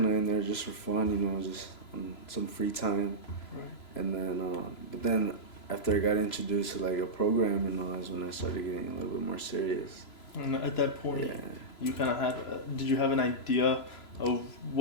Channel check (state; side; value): late; right; 3.0 ms